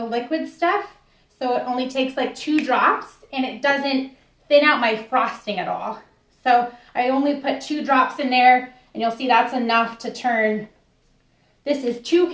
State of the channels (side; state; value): both; identical; correlation 1.00